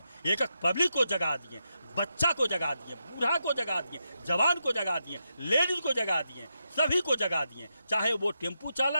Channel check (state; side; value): inverted; both; correlation -0.85